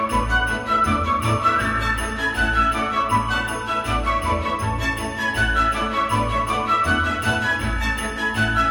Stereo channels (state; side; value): identical; both; correlation 1.00